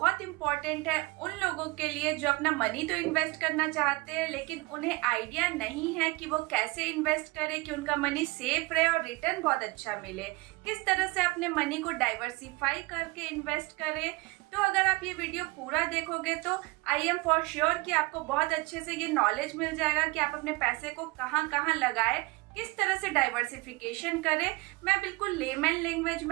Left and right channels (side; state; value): left; quieter; 23.5 dB